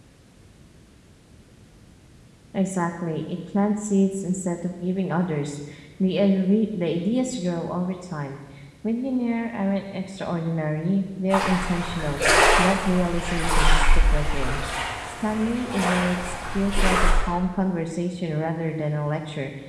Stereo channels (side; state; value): both; identical; correlation 1.00